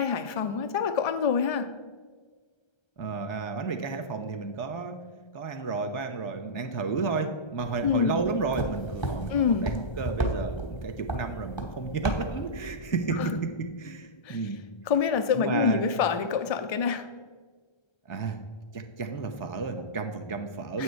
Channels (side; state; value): right; late; 1.3 ms